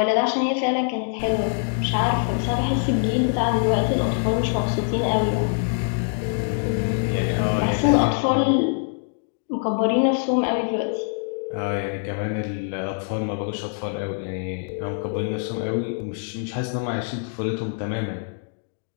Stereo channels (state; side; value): silent; right; digital silence